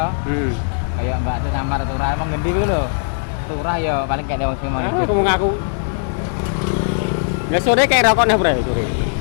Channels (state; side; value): silent; right; digital silence